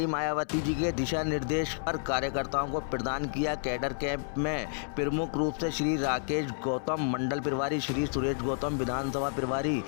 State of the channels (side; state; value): right; silent; 58 dB below the other